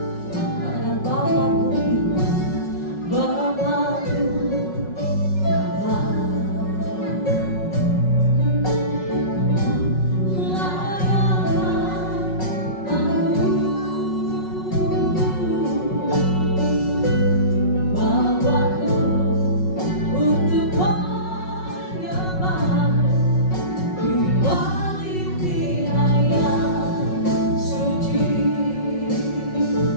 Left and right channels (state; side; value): late; right; 5.4 ms